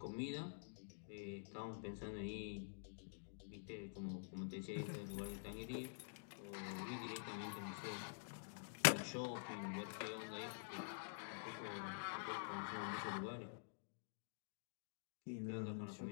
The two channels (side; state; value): right; silent; digital silence